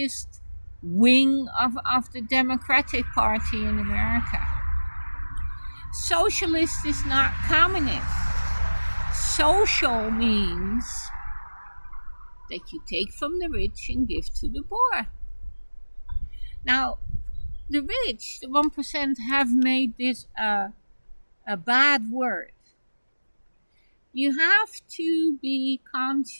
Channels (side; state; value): both; inverted; correlation -1.00